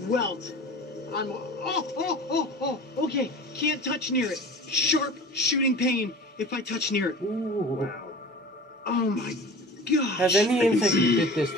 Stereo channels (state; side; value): normal; both; correlation 0.38